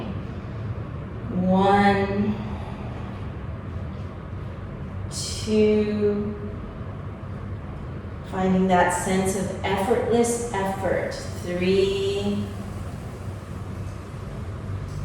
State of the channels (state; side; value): identical; both; correlation 1.00